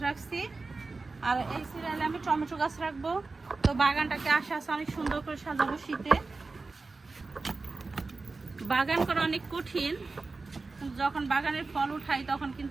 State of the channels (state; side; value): quieter; left; 3.8 dB